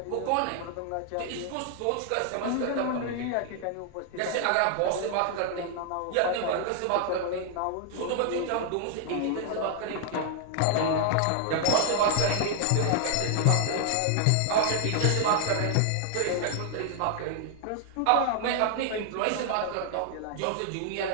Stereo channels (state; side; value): different; both; correlation 0.00